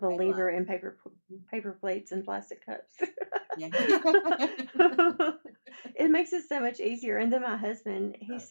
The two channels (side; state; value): both; inverted; correlation -1.00